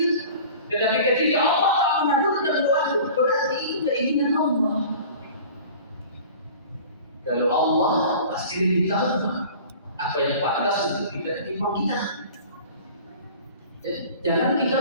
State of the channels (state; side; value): inverted; both; correlation -0.42